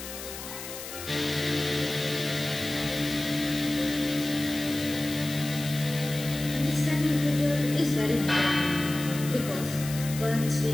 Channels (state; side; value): noise; left; hiss, 10 dB below the sound